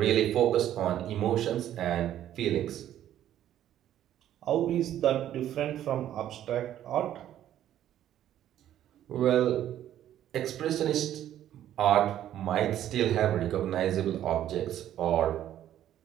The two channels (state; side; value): quieter; left; 11.7 dB